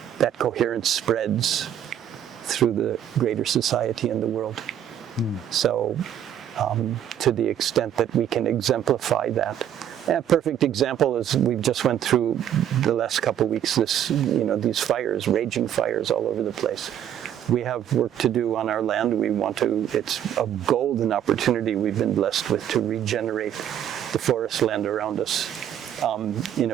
coherence spreads through the greater society and the world. So to the extent that we can exemplify that. A perfect example is we've just went through the last couple of weeks these fires, raging fires all over the place. We have work to do on our land. It's a golden opportunity we've been blessed with to regenerate the forest land around us in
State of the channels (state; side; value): quieter; left; 10.1 dB